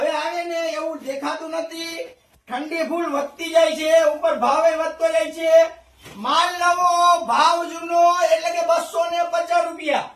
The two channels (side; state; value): both; identical; correlation 1.00